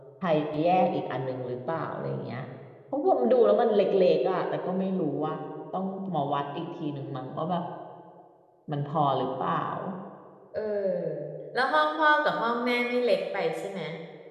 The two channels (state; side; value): identical; both; correlation 1.00